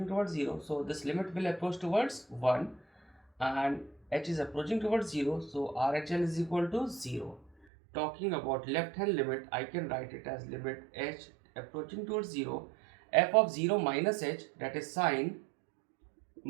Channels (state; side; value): drops out; left; at 7.5 s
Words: towards 0. So this limit will approach towards 1 and h is approaching towards 0. So RHL is equal to 0. Talking about left hand limit, I can write it as limit h approaching towards 0, f of 0 minus h, that is sine